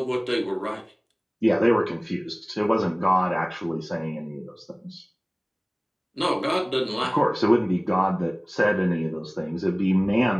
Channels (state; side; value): identical; both; correlation 1.00